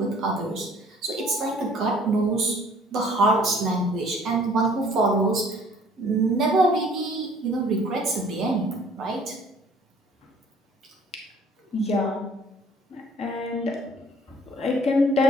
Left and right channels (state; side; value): normal; both; correlation 0.56